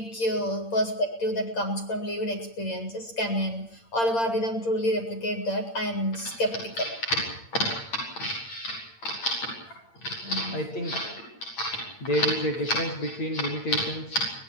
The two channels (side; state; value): right; late; 8.8 ms